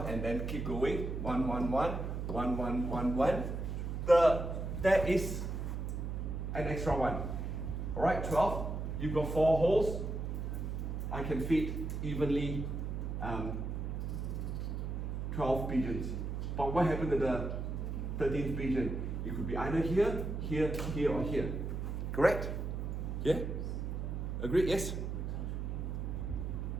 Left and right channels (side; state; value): right; noise; hum, 3 dB below the sound